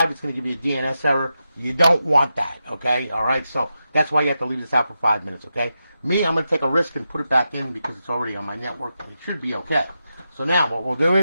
it's going to give you a DNS error. You don't want that, okay? All right, so that's why you have to leave this out for 5 minutes, okay? Me, I'm going to take a risk and put it back in because it's already on my network, and it should be okay. So now, what we'll do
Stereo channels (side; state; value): both; inverted; correlation -0.88